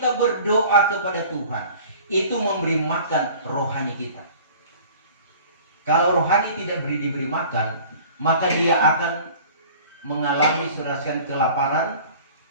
berdoa kepada Tuhan. Itu memberi makan rohani kita. Kalau rohani tidak diberi makan, maka dia akan mengalami serasian kelaparan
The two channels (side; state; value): both; inverted; correlation -0.46